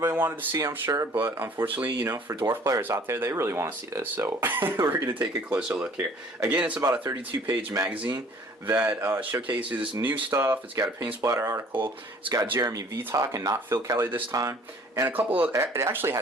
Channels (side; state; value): both; normal; correlation 0.54